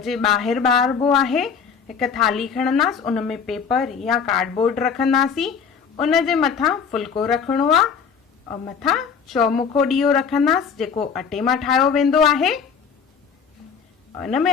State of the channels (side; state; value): right; quieter; 6.5 dB